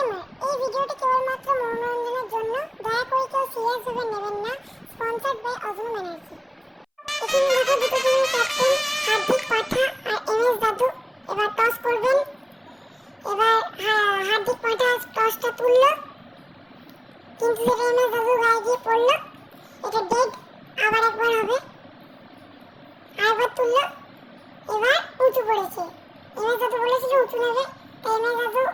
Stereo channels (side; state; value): both; identical; correlation 1.00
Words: এই ভিডিওটি কেবলমাত্র মনোরঞ্জনের জন্য, দয়া করে কেউ সিরিয়াস ভাবে নেবেন না। স্পন্সর্ড বাই অজনু ব্যানার্জি। এখানে দেখো দুটো টিমের ক্যাপ্টেন হার্দিক পাঠা আর এমএস দাদু এবার টস করবেন। এবার হার্দিক পাঠা টসটা তুললো, কিন্তু সেটা এমএস দাদু গায়ে গিয়ে পড়লো, এটা ডেড। আবার একবার হবে, আরেকবার তুললো, এবার উঁচু পড়েছে। এমএস দাদু বলেছিল উঁচু নেবে, তাই এমএস দাদু